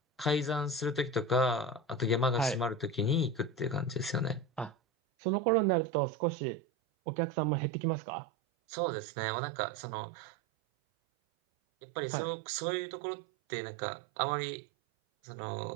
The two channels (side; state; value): left; drops out; at 4.8 s